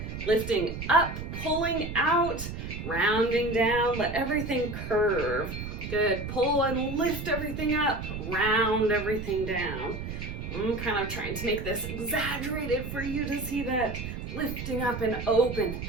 lifting up, pulling out, rounding down, let everything curve. Good. Pull and lift everything up, round everything down. I'm kind of trying to make this exaggerated for you to see that. Lifting up and open,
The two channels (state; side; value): noise; right; rumble, 7 dB below the sound